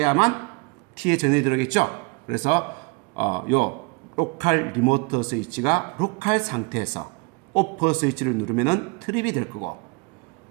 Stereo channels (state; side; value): quieter; left; 29.1 dB